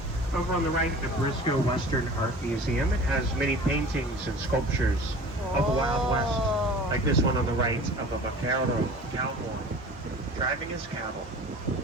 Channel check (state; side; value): normal; both; correlation 0.42